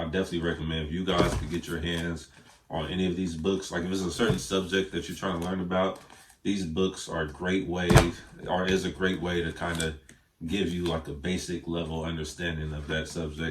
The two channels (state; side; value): identical; both; correlation 1.00